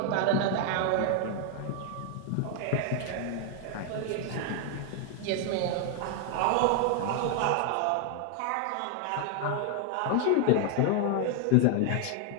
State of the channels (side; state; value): both; different; correlation 0.00